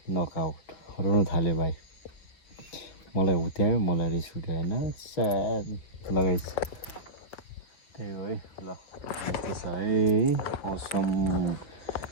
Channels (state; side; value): late; right; 5.9 ms